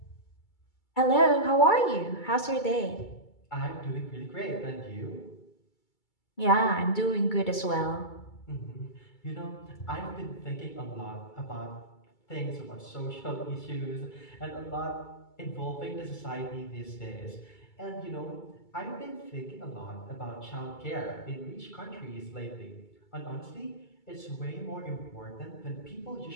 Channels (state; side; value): late; right; 2.3 ms